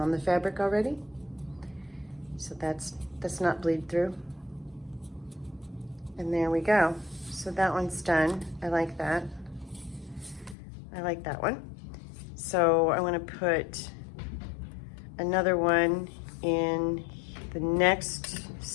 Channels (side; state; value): right; drops out; at 10.6 s